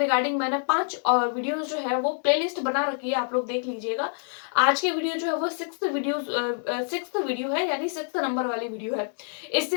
मैंने 5 वीडियोस जो है वो प्लेलिस्ट बना रखी है, आप लोग देख लीजिएगा। आज की वीडियो जो है वो सिक्स्थ वीडियो है, यानी सिक्स्थ नंबर वाली वीडियो है। इससे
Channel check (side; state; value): right; silent; digital silence